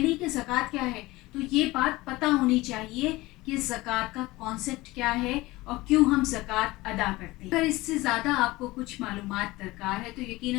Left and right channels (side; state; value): right; quieter; 20.1 dB